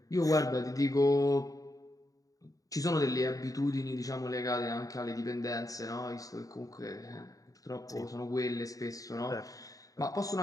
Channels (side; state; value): right; late; 0.17 ms